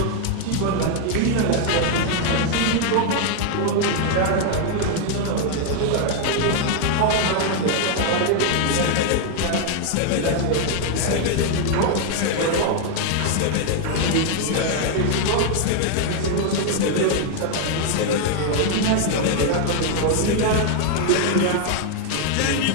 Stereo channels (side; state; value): both; different; correlation 0.00